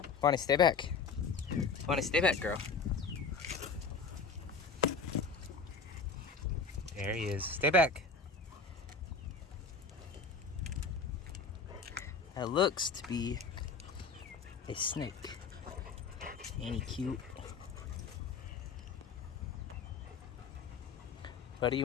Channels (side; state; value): right; quieter; 4.9 dB